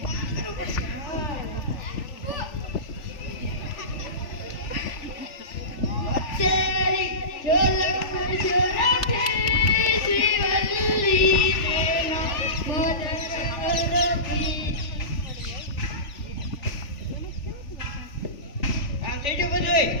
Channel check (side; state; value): right; late; 3.4 ms